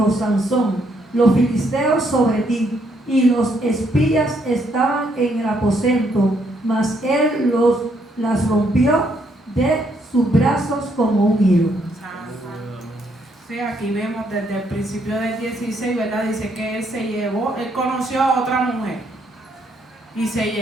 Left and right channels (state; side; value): normal; both; correlation 0.72